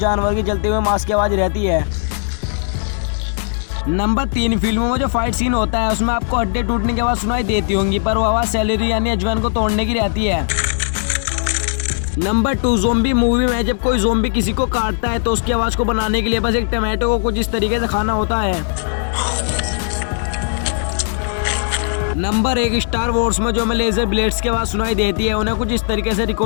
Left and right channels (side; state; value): right; silent; digital silence